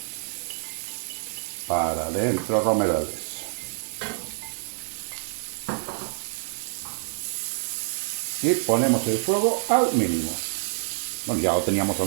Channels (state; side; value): silent; left; 60 dB below the other